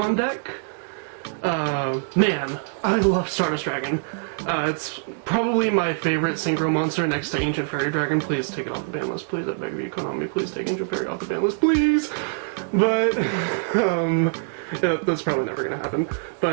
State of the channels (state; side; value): silent; left; digital silence